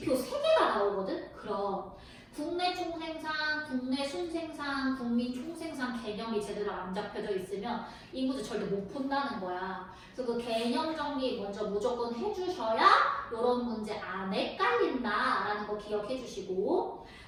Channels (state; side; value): identical; both; correlation 1.00